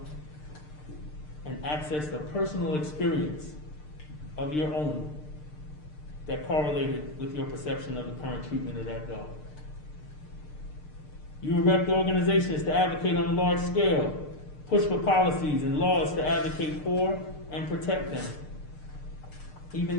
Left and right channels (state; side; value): late; right; 6.6 ms